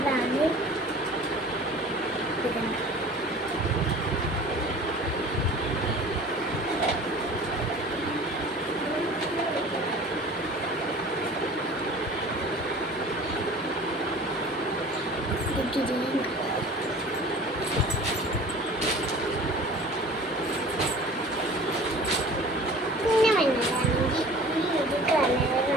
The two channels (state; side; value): normal; both; correlation 0.43